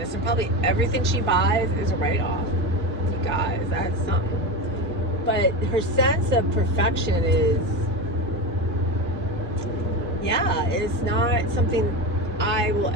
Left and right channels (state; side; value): normal; both; correlation 0.21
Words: and probably everything she buys is a write-off. You guys, that's something. But her sense of perfection it's not something I will